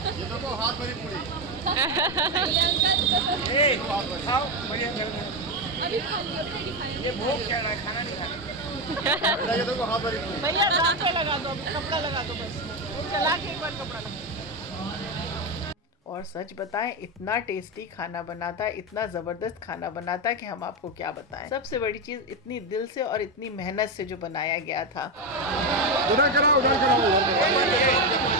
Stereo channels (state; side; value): normal; both; correlation 0.10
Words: ये भोग क्या रहा है, खाना नहीं खाना। भैया दांत पे लगा दो, कपड़ा लगा दो, बस चला के एक बार कपड़ा लगा। और सच बताएं, इतना टेस्टी खाना बनाता है, इतना ज़बरदस्त खाना बनाता है कि हम आपको क्या बताएं। सबसे बड़ी चीज़, इतनी दिल से और इतनी मेहनत से जो बनाया गया था। उधर कराओ